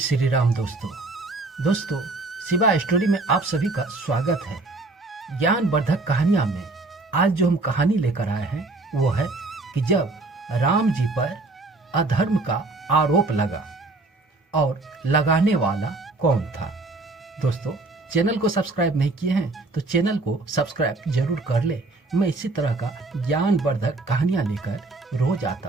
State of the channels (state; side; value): quieter; left; 3.2 dB